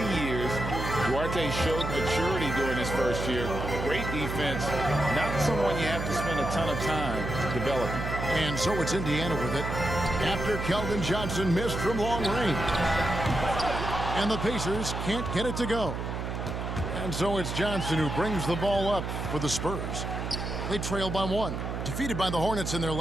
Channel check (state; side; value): noise; right; hum, 4 dB below the sound